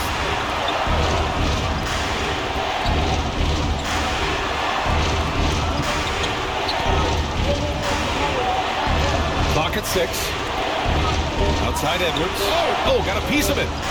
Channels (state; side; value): identical; both; correlation 1.00